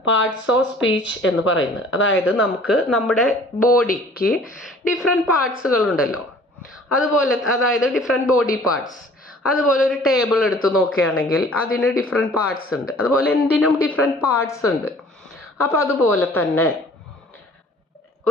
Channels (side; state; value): both; normal; correlation 0.51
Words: parts of speech എന്ന് പറയുന്നത്. അതായത് നമുക്ക് നമ്മുടെ ബോഡിക്ക് ഡിഫറെൻറ്റ് പാർട്സുകളുണ്ടല്ലോ, അതുപോലെ അതായത് ഡിഫറെൻറ്റ് ബോഡി പാർട്സ്. അതുപോലെ ഒരു ടേബിൾ എടുത്ത് നോക്കുകയാണെങ്കിൽ അതിന് ഡിഫറെൻറ്റ് പാർട്സ് ഉണ്ട്. അതുപോലെ എന്തിനും ഡിഫറെൻറ്റ് പാർട്സ് ഉണ്ട്. അപ്പോൾ അതുപോലെ തന്നെ